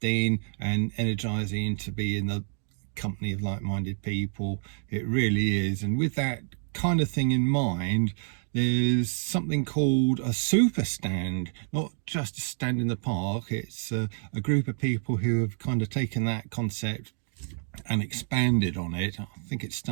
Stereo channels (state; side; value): silent; left; digital silence